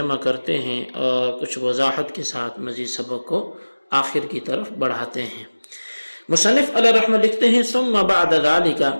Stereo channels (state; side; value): inverted; both; correlation -1.00